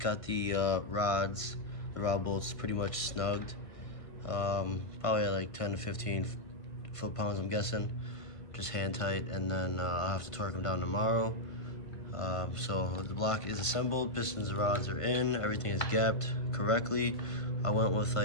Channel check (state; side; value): late; right; 1.5 ms